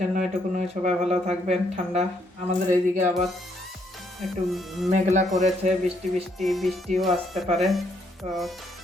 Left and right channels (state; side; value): normal; both; correlation 0.72